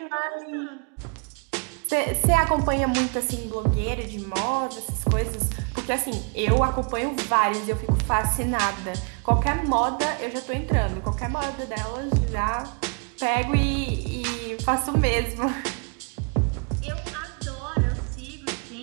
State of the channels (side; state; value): left; quieter; 37.3 dB